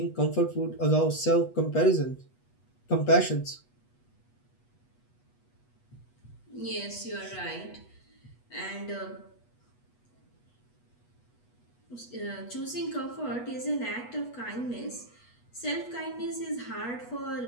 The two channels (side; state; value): right; late; 8.2 ms